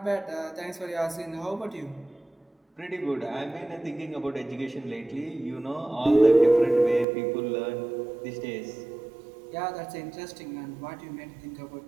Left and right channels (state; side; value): drops out; left; at 7.1 s